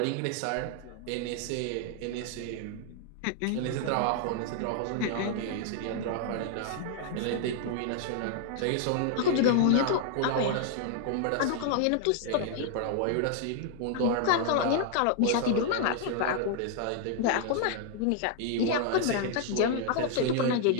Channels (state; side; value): different; both; correlation 0.00